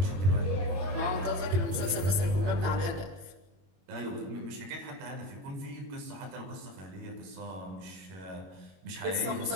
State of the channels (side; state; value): left; late; 21 ms